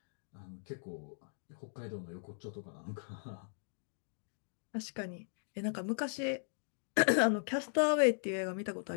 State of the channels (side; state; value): right; silent; digital silence